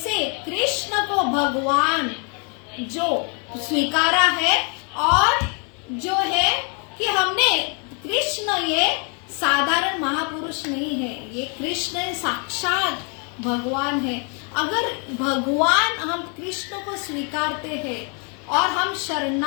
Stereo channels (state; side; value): quieter; right; 37.1 dB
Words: कृष्ण को भगवान जो स्वीकारा है, और जो है कि हमने कृष्ण ये साधारण महापुरुष नहीं है, ये कृष्ण साक्षात भगवान है। अगर भगवान, हम कृष्ण को स्वीकारते हैं और हम